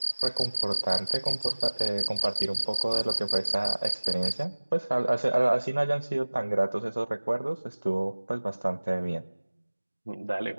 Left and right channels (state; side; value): inverted; both; correlation -1.00